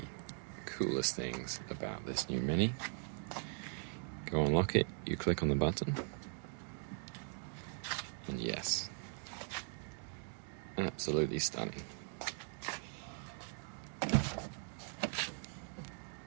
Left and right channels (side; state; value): left; silent; 51 dB below the other